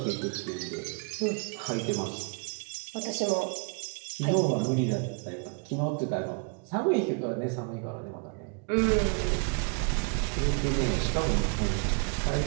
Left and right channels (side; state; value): left; quieter; 37.5 dB